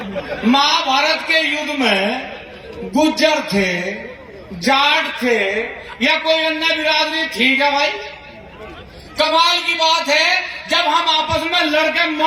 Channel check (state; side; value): identical; both; correlation 1.00